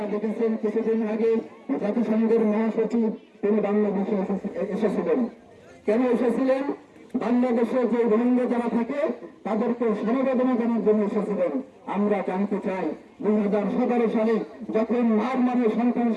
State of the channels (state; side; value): identical; both; correlation 1.00